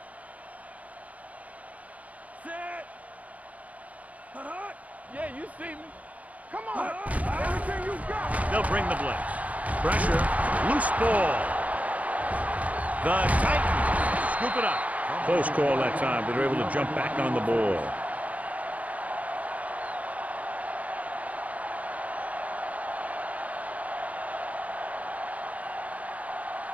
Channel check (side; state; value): left; late; 0.070 ms